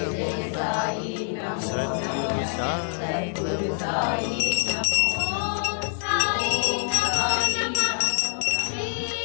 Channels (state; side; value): silent; right; digital silence